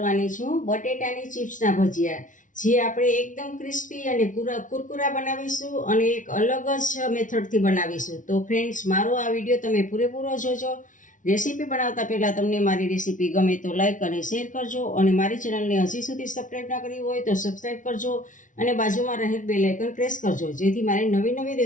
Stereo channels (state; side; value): late; right; 0.37 ms